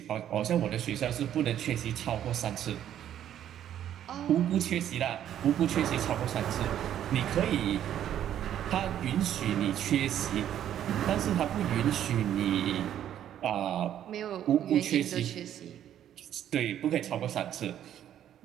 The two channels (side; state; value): left; quieter; 10.7 dB